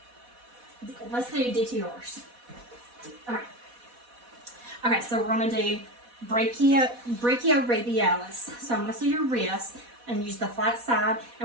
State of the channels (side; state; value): left; late; 4.1 ms